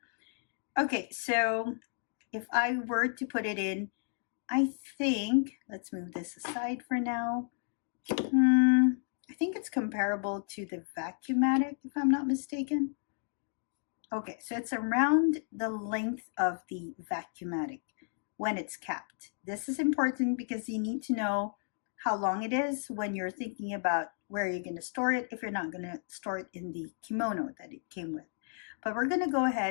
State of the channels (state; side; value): silent; right; 56 dB below the other